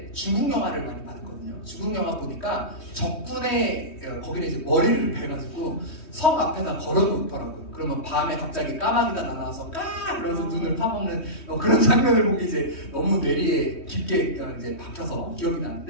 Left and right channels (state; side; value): late; right; 3.2 ms